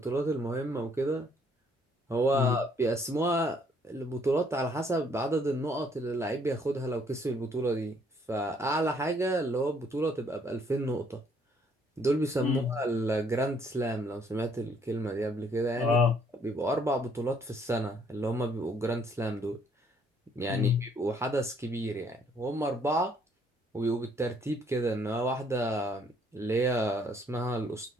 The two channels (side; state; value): both; normal; correlation 0.65